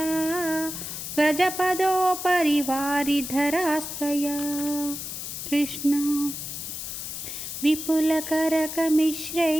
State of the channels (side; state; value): left; noise; hiss, 7 dB below the sound